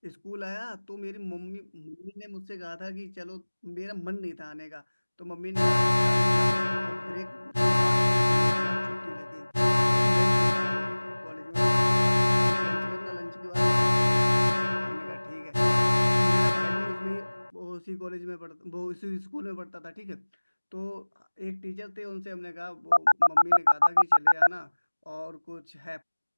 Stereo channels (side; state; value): both; inverted; correlation -1.00